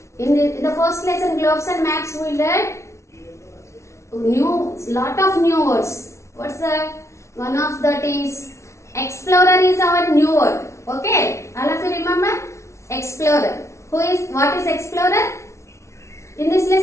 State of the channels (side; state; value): right; late; 0.13 ms